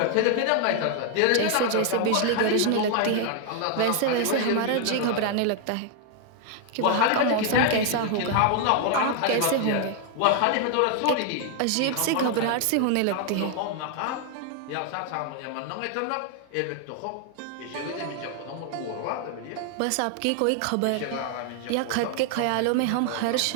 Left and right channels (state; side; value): different; both; correlation 0.00